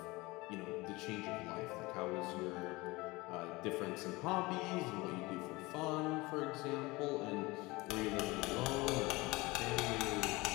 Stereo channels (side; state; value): right; quieter; 22.4 dB